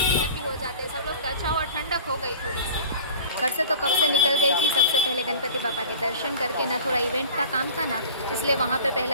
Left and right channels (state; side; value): inverted; both; correlation -0.42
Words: हो जाते हैं सब लोग। अच्छा हुआ ठंडक हो गई थोड़ी सी। घर से तो कब से निकल गई थी। सबसे पहले गणपति बापा के दर्शन करके ना, थोड़ा इवेंट का काम था ना, इसलिए वहाँ पे